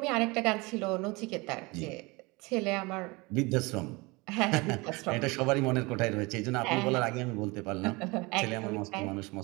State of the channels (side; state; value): left; quieter; 25.0 dB